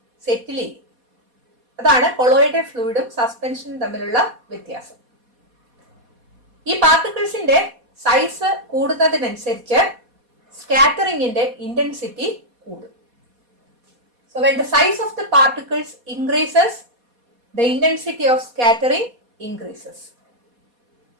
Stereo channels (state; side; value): late; left; 4.2 ms